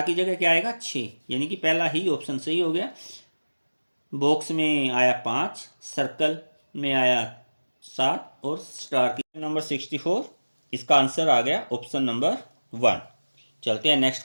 की जगह क्या आएगा? 6, यानी कि पहला ही ऑप्शन सही हो गया। बॉक्स में आया 5, सर्कल में आया 7 और स्टार की नंबर 64, इसका आंसर आ गया ऑप्शन नंबर 1। चलते हैं नेक्स्ट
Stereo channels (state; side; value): inverted; both; correlation -1.00